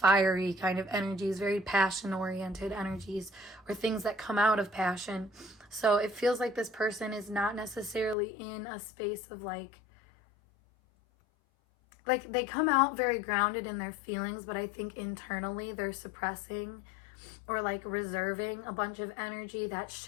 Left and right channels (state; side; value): drops out; right; at 8.2 s